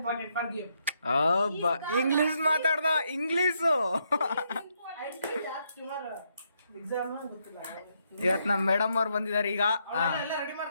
for game. English ಮಾತಾಡ್ದ, ಇಂಗ್ಲಿಷು. ಎಕ್ಸಾಮ್ ಗೊತ್ತಿಲ್ಲ. ಇವತ್ ನಮ್ ಮೇಡಮ್ ಅವ್ರು ಬಂದಿದ್ದಾರೆ ಈಗ. ಎಲ್ಲ ರೆಡಿ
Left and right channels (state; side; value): inverted; both; correlation -0.77